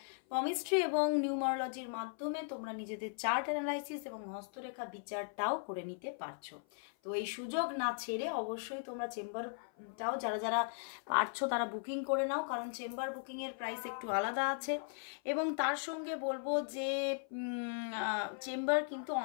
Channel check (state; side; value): silent; right; 53 dB below the other